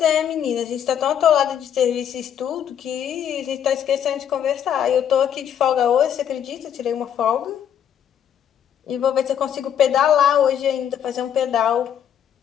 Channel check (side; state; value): right; quieter; 9.2 dB